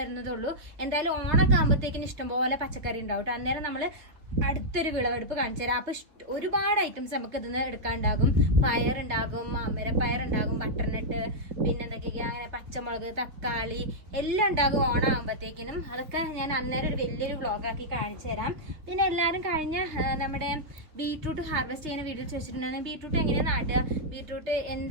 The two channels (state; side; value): late; left; 3.4 ms